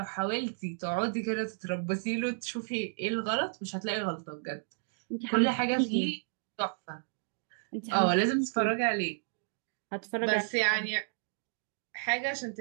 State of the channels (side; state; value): left; silent; digital silence